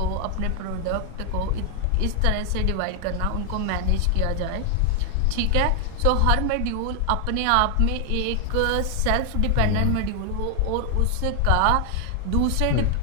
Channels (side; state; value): both; different; correlation 0.00